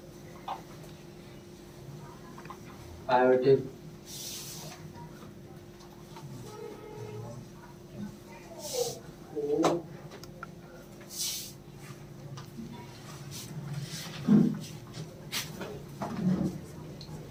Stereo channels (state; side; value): identical; both; correlation 1.00